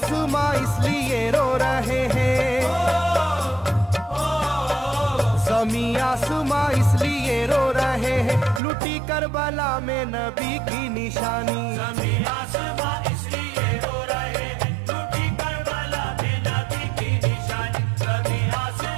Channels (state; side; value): drops out; left; at 8.6 s